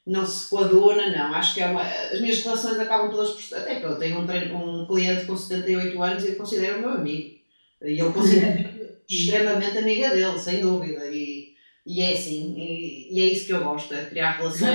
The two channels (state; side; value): inverted; both; correlation -1.00